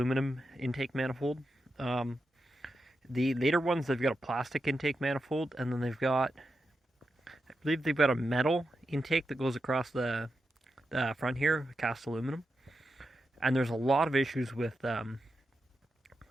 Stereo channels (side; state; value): both; normal; correlation 0.88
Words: intake manifold. The later ones, they've got a plastic intake manifold, and then they've got, I believe they've got a metal intake that goes across the front here, cast aluminum. And there's a lot of issues with